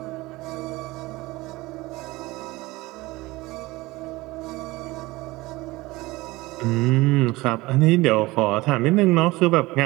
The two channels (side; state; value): left; quieter; 20.6 dB